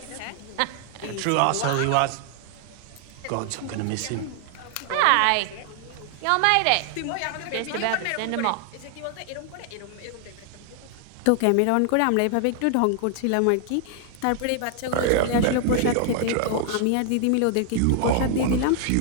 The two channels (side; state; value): both; different; correlation 0.00